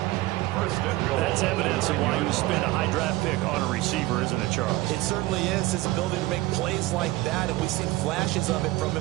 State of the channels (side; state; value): left; quieter; 18.9 dB